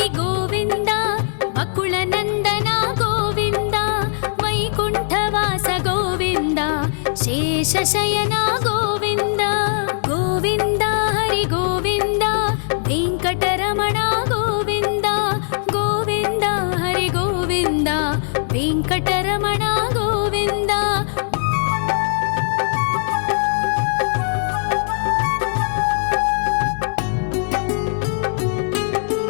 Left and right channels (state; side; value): silent; right; digital silence